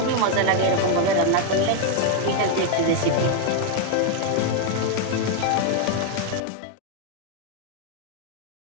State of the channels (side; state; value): both; different; correlation 0.00